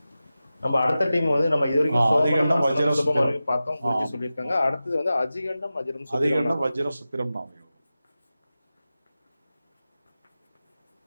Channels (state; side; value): inverted; both; correlation -0.94